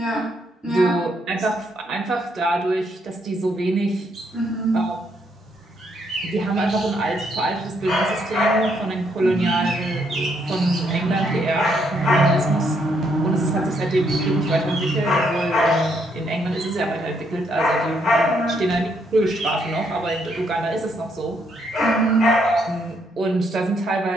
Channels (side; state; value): both; normal; correlation 0.73